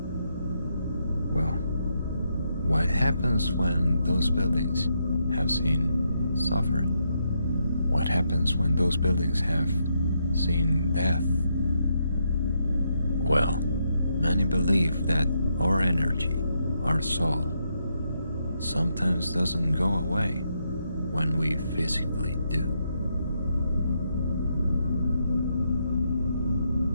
Well, what happens when those buildings have seen suffering? What happens when those buildings have seen death? Well, many believe that our energy, our soul, sometimes doesn't go away when we physically do.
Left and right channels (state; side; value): inverted; both; correlation -0.79